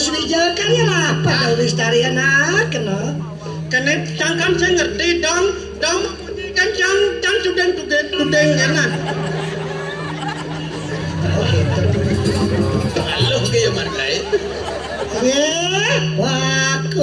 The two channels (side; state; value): both; identical; correlation 1.00